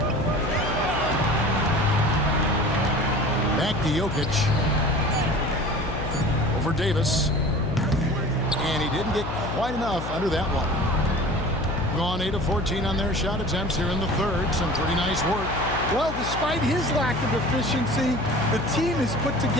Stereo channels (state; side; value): noise; left; hum, 7 dB below the sound